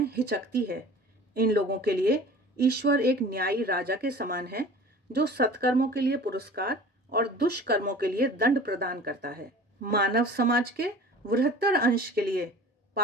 हिचकती है। इन लोगों के लिए ईश्वर एक न्यायी राजा के समान है जो सत्कर्मों के लिए पुरस्कार और दुष्कर्मों के लिए दंड प्रदान करता है। मानव समाज के बृहत्तर अंश के लिए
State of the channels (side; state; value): both; normal; correlation 0.42